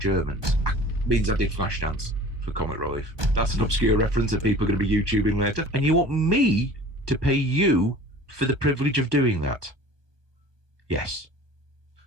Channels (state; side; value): late; left; 1.3 ms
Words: means I did Flashdance for comic relief. That's an obscure reference that people are going to be YouTubing later. And you want me to pay you for the privilege of doing that? Yes.